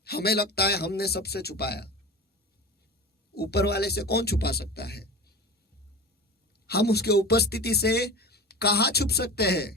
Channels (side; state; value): both; normal; correlation 0.31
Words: हमें लगता है हमने सबसे छुपाया, ऊपर वाले से कौन छुपा सकता है। हम उसके उपस्थिति से कहां छुप सकते